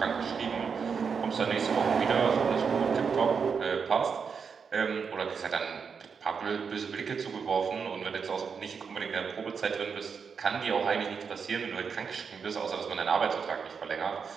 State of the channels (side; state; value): left; quieter; 6.0 dB